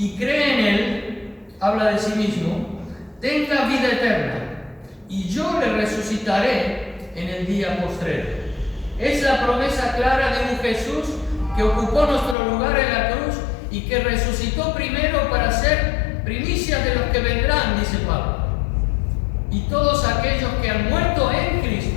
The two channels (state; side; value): drops out; right; at 12.4 s